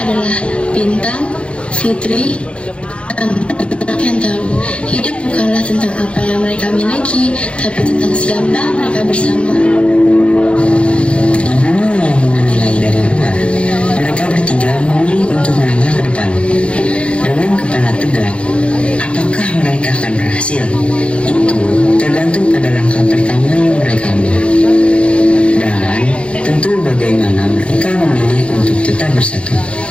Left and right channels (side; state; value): right; late; 0.059 ms